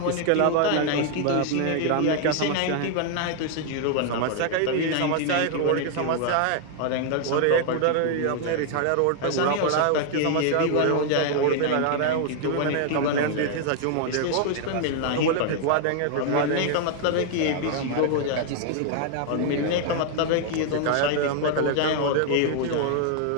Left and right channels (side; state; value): both; different; correlation 0.00